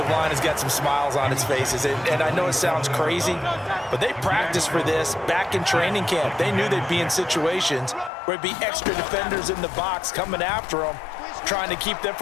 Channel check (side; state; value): right; drops out; at 8.1 s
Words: line has got some smiles on its faces. And I know it sounds crazy, but they practiced for this back in training camp. They knew they'd be in situations where it'd be extra defenders in the box coming after them, trying to keep them